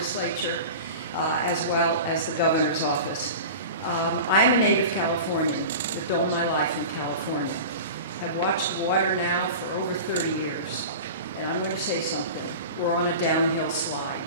as well as the governor's office. I'm a native Californian. I've built my life in California. I've watched water now for over 30 years, and I'm going to say something. We're on a downhill slide.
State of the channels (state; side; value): inverted; both; correlation -0.33